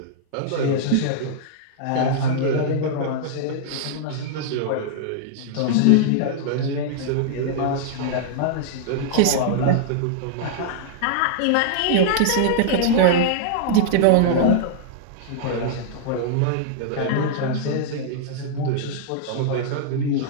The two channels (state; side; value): different; both; correlation -0.01